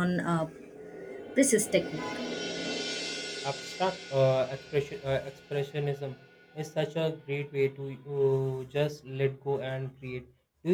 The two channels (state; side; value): identical; both; correlation 1.00